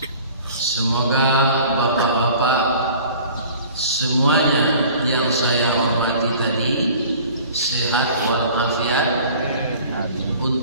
Semoga bapak-bapak semuanya yang saya hormati tadi sehat walafiat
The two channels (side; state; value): both; inverted; correlation -0.47